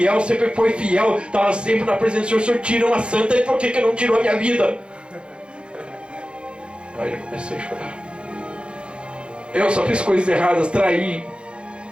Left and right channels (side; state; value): left; late; 0.056 ms